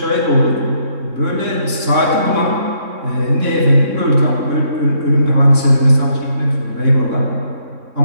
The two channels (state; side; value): late; left; 3.6 ms